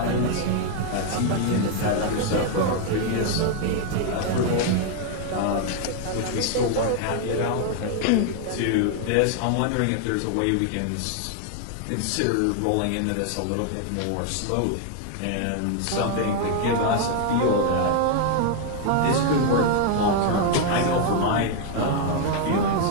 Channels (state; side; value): different; both; correlation 0.00